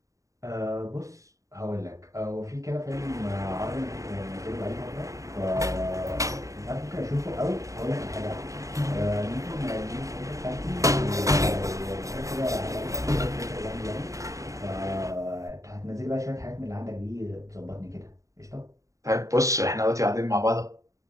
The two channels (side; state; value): left; late; 0.16 ms